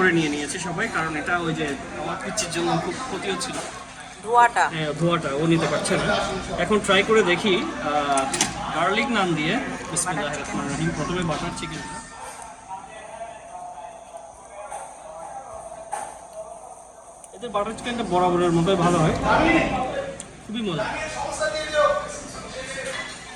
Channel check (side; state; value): both; identical; correlation 1.00